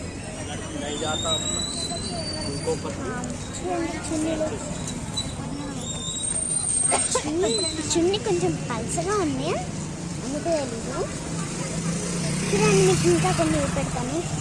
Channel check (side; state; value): both; identical; correlation 1.00